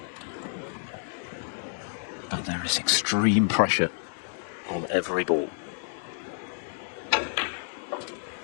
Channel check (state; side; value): silent; right; digital silence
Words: But there is extreme pressure on every ball.